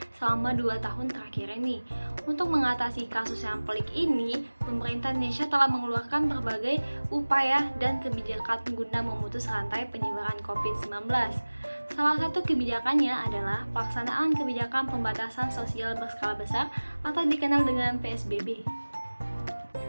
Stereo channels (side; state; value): both; inverted; correlation -1.00